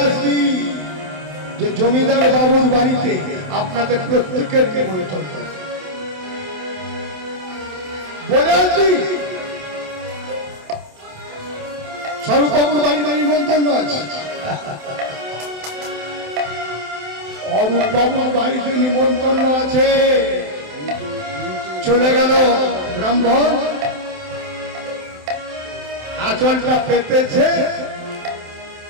আসবি যে জমিদার বাবুর বাড়িতে আপনাদের প্রত্যেকের নিমন্ত্রণ, বলে আসবি স্বরূপবাবুর বাড়িতে নিমন্ত্রণ আছে, অরূপবাবুর বাড়িতে নিমন্ত্রণ আছে। চলে গেল ব্রাহ্মণ, আঁচলটা পেতেছে,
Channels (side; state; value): left; late; 27 ms